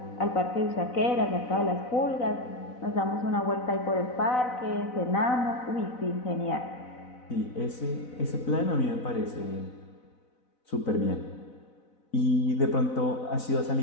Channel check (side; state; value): right; late; 4.0 ms